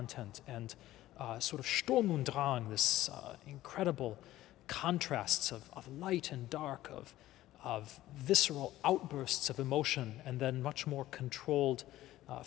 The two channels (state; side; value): quieter; right; 15.1 dB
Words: and sort of Sturm und Drang, this incredible contrasts of light and dark, of visceral outbursts of emotion, and then much more controlled